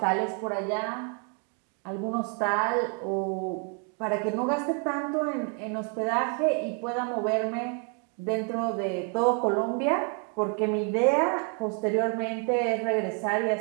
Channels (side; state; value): left; quieter; 39.8 dB